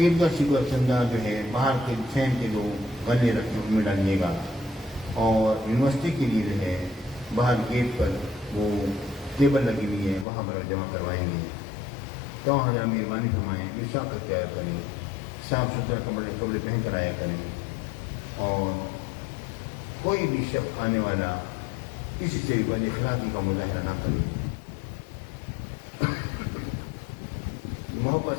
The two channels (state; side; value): drops out; right; at 10.2 s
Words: شکر چندہ جو ہے باہر کے فین کے جو گلے رکھے ان میں ڈالیے گا. اور یونیورسٹی کے لیے جو ہے باہر گیٹ پر وہ ٹیبل لگی ہوئی ہے وہاں پر جمع کروائیں گے. تو ہزار مہربانی فرمائیں، عشاء کا تیار کریں، صاف ستھرا کپڑے پہن کر آیا کریں. اور کوئی بھی شخص آنے والا کسی سے بد اخلاقی کا مظاہرہ نہ کرے. محبت